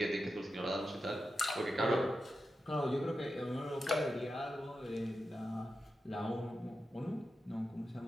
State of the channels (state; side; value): normal; both; correlation 0.90